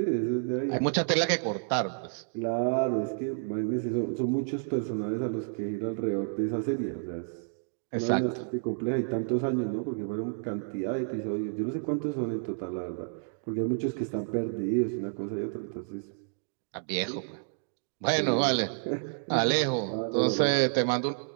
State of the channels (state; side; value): silent; left; digital silence